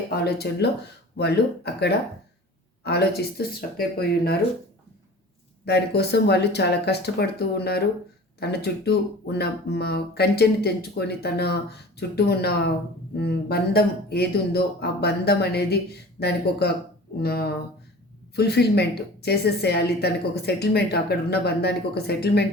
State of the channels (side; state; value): both; normal; correlation 0.41